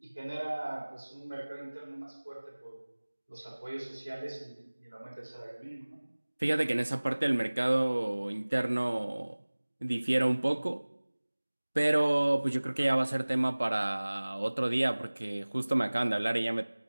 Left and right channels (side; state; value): both; inverted; correlation -1.00